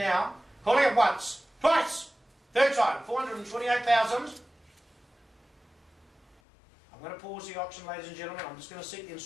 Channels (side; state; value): right; drops out; at 6.4 s